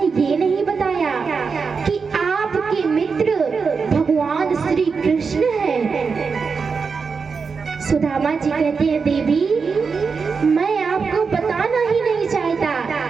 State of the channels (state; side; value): quieter; left; 5.2 dB